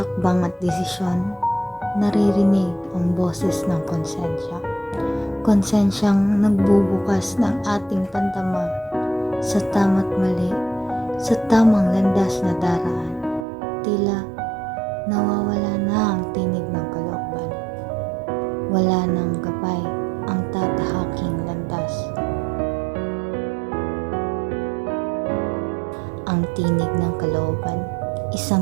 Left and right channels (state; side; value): drops out; left; at 13.5 s